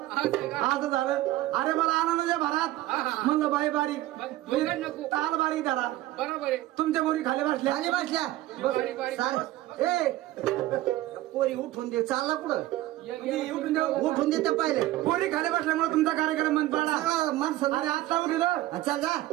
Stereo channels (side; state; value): left; quieter; 16.0 dB